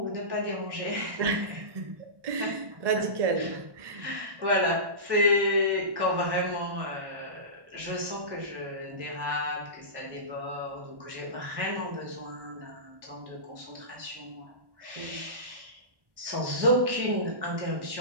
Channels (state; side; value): late; left; 1.1 ms